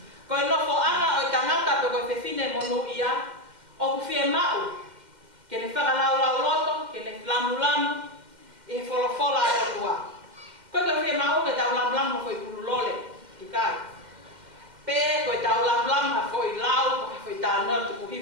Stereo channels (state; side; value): late; left; 2.1 ms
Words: Koe nofo ana o i tangata pe koe whewhine monu ia, o ku fie mau, ke ne whakalau lau loto, ke ne lamu, e wholofola e o tua. Koe koe whia mau ke tau lam ha foi pululole, i kai. Pe koe tau lam ha foi lau, ha foi tāna tuku